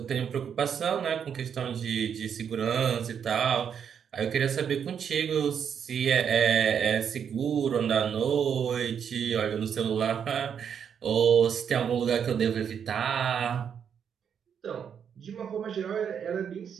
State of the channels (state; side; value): quieter; left; 7.7 dB